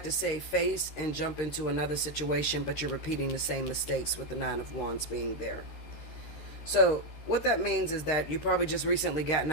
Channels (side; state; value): right; late; 13 ms